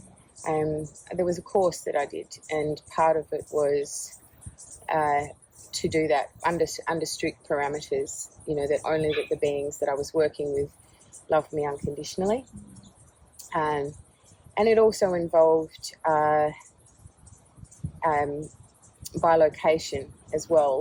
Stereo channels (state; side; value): identical; both; correlation 1.00